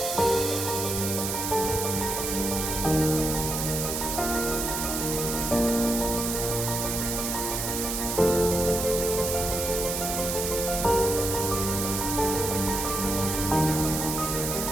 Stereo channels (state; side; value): noise; right; hiss, 2 dB below the sound